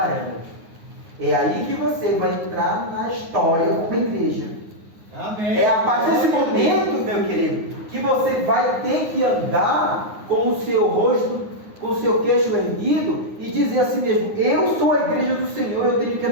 É aí que você vai entrar na história como igreja. Amém. É a partir desse momento, meu querido, que você vai ter que andar com o seu rosto, com o seu queixo erguido e dizer a si mesmo: eu sou a igreja do Senhor. Eu tenho que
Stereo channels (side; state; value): left; late; 9.6 ms